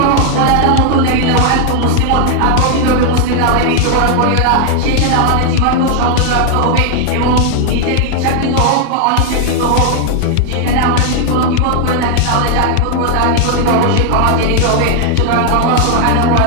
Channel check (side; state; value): both; different; correlation 0.00